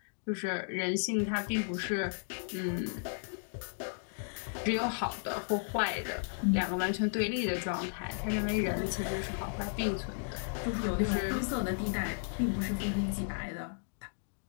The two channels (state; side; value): silent; right; digital silence